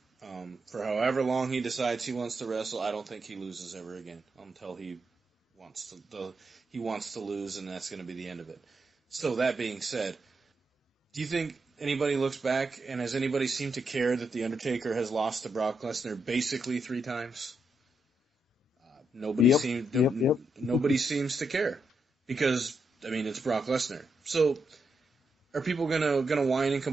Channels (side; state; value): both; normal; correlation 0.82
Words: For however long he decides he wants to wrestle, I don't think he loses ever again until he wants to lose, and that's going to be the end of it. So that being said, do you think anybody looks back, and has anybody seemed to care that The Undertaker has lost to Brock Lesnar basically 3 times? Nobody seems to care because it's Brock Lesnar. So are people gonna whine and